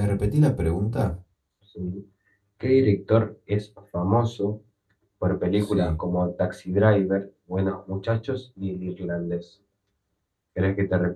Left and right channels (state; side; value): identical; both; correlation 1.00